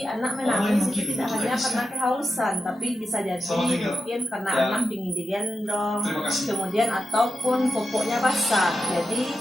anak menangis itu tidak hanya karena kehausan, tapi bisa jadi mungkin karena anak ingin digendong, kemudian ataupun popoknya basah. Jadi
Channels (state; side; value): normal; both; correlation 0.89